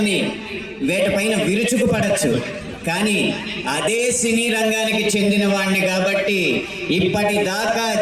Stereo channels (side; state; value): both; identical; correlation 1.00